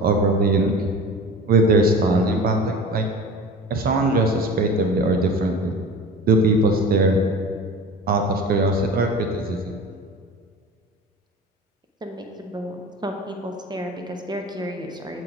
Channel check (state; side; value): normal; both; correlation 0.36